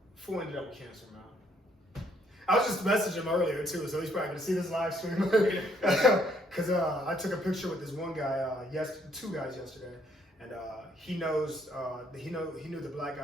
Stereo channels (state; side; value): normal; both; correlation 0.68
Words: Fool ended up with cancer, man. I was just messaging him earlier too, so he's probably gonna see this live stream. Because I took a picture with this one guy, two guys yesterday, and he knows, he knew the black